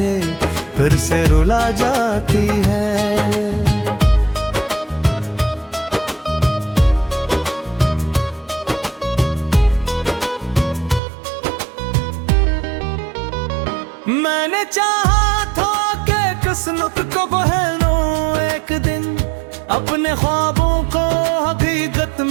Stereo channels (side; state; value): left; drops out; at 11.0 s